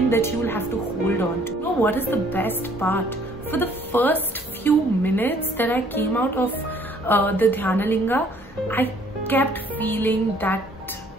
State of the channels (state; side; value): normal; both; correlation 0.60